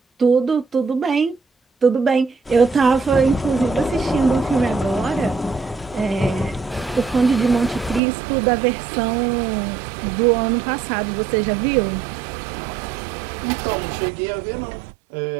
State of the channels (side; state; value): left; drops out; at 8.0 s